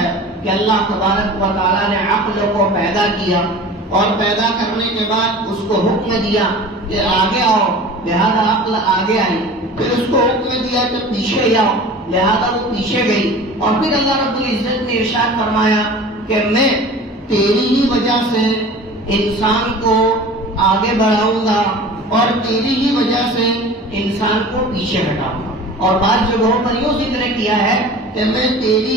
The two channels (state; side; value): normal; both; correlation 0.39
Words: کہ اللہ تبارک و تعالیٰ نے عقل کو پیدا کیا، اور پیدا کرنے کے بعد اس کو حکم دیا کہ آگے آؤ، لہذا عقل آگے آئی. پھر اس کو حکم دیا کہ پیچھے جاؤ، لہذا وہ پیچھے گئی. اور پھر اللہ رب العزت نے ارشاد فرمایا کہ میں تیری ہی وجہ سے انسان کو آگے بڑھاؤں گا اور تیری ہی وجہ سے انسان کو پیچھے ہٹاؤں گا. اور بعض جگہوں پر یوں ذکر کیا ہے کہ میں